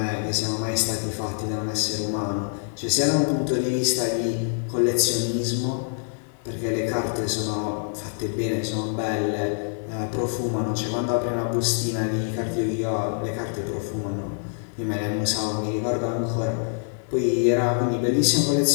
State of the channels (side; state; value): right; silent; digital silence